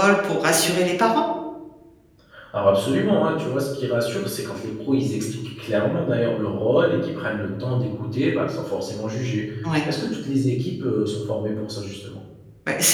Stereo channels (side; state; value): both; identical; correlation 1.00